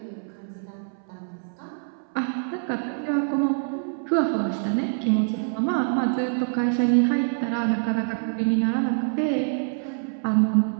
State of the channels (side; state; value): left; silent; 61 dB below the other